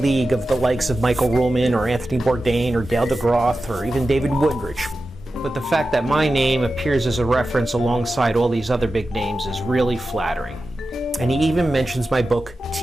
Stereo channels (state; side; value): normal; both; correlation 0.93